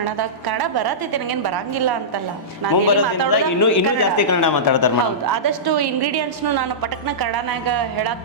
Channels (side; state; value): both; normal; correlation -0.17